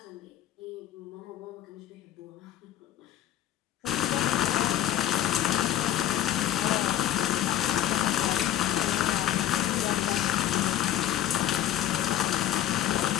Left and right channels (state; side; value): quieter; right; 12.0 dB